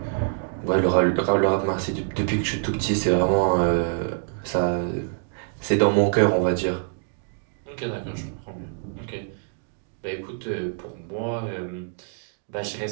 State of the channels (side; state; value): left; silent; digital silence